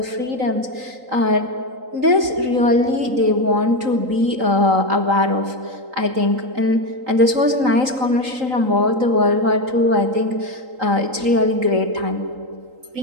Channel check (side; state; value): left; late; 3.8 ms